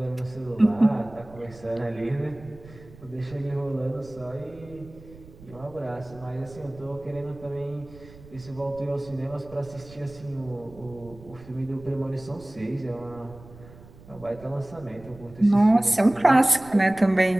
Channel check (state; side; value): noise; right; rumble, 20 dB below the sound